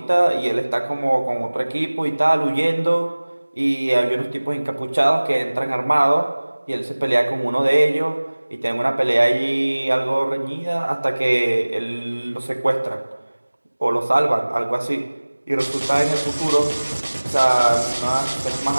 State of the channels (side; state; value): both; inverted; correlation -1.00